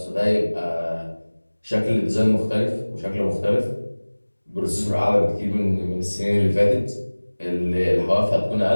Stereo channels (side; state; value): both; inverted; correlation -1.00